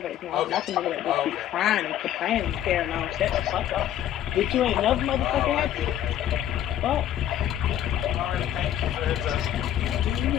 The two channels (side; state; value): right; quieter; 11.3 dB